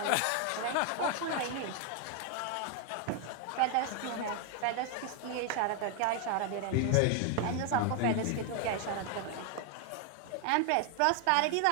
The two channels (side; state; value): both; different; correlation 0.00